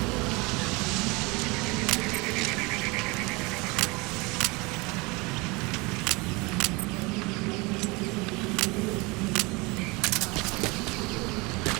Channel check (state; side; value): quieter; left; 25.9 dB